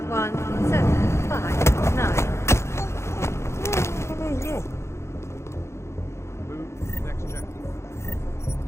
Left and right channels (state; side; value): late; right; 0.13 ms